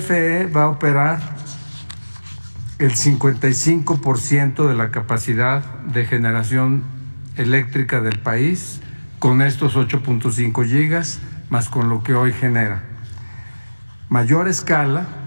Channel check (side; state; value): both; inverted; correlation -1.00